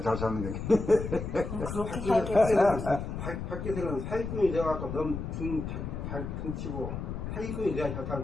잘 사는 게. 그렇게 살겠지. 밖에서는 사기꾼이 돼갖고 너무 잘 퉁치고 사기꾼이 돼야 잘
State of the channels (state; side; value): noise; left; rumble, 5 dB below the sound